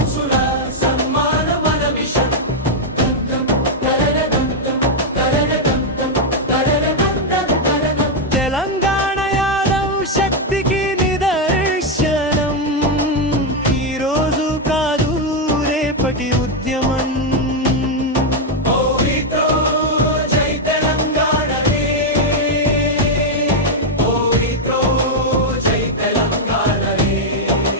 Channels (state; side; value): normal; both; correlation 0.01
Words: సన్మాన మన మిషన్. తెలంగాణ యాదవ్ శక్తికి నిదర్శనం. ఈరోజు కాదు రేపటి ఉద్యమం. ఓరితో జై తెలంగాణ రే, ఓరితో జై తెలంగాణ రే.